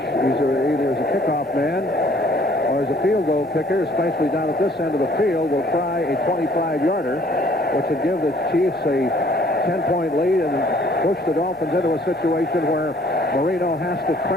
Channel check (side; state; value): both; normal; correlation 0.59